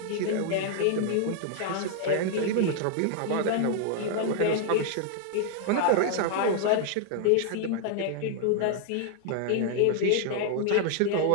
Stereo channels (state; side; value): different; both; correlation 0.00